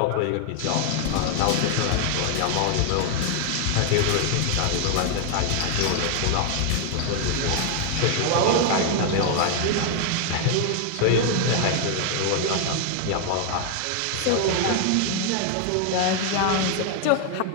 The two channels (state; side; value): different; both; correlation 0.00